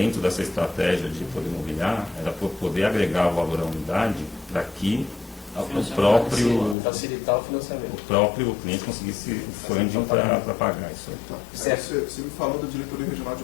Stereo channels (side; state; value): right; drops out; at 6.8 s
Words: dessa estratégia de poder mobiliar, era poder agregar o valor à unidade para que o próprio facilitar o financiamento. O próprio cliente conseguisse o funding para pagar isso aí. Tá. Você me falou da diretoria regional